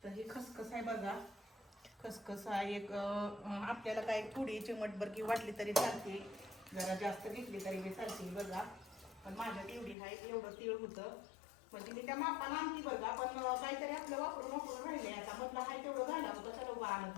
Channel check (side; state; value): right; drops out; at 10.0 s